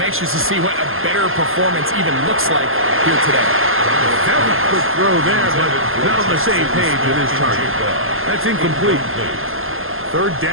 to see what a better performance even looks like here today. That was a quick throw there, but not on the same page with his target. That's incomplete. Third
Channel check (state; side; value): late; left; 0.60 ms